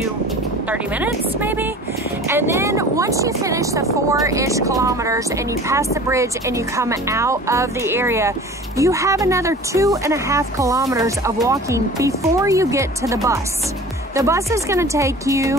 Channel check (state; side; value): normal; both; correlation 0.42